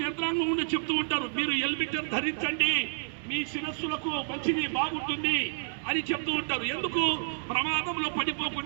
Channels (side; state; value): left; silent; digital silence